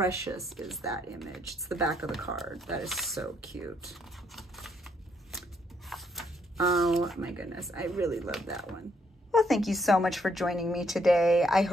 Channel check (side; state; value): both; normal; correlation 0.72